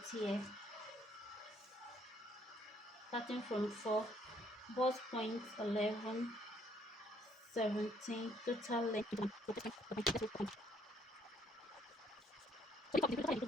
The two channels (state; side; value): normal; both; correlation 0.66